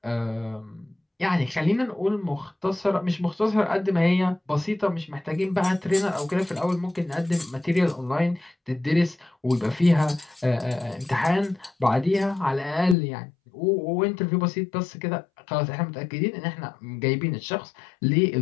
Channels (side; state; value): right; drops out; at 13.0 s